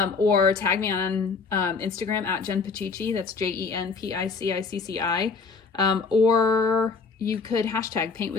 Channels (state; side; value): quieter; right; 4.6 dB